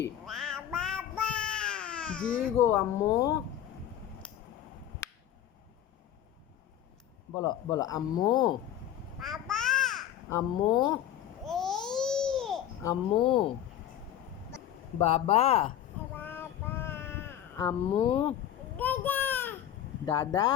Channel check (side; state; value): right; quieter; 11.0 dB